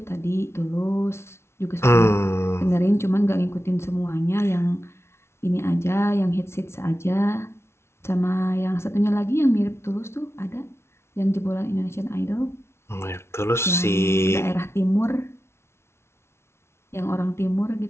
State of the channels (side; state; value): right; late; 0.13 ms